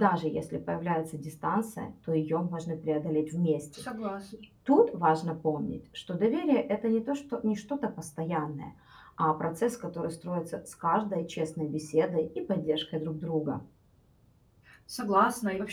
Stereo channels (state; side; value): identical; both; correlation 1.00